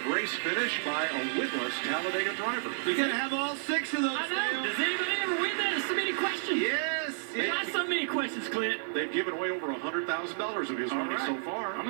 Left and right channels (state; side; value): silent; left; 57 dB below the other